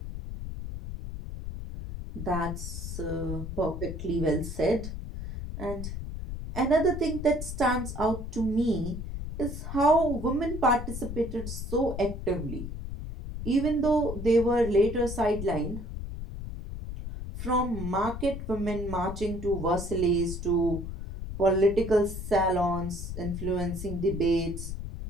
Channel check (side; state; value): left; noise; rumble, 7 dB below the sound